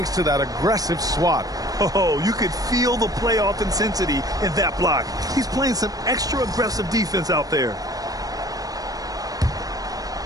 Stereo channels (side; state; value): left; late; 0.18 ms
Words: to that aggressive swat. Oh, you could feel the playoff intensity in that block. He's playing some extra aggressive defense out there.